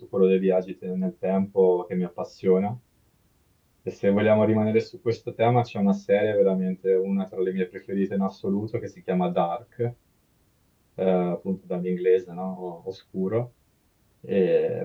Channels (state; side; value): identical; both; correlation 1.00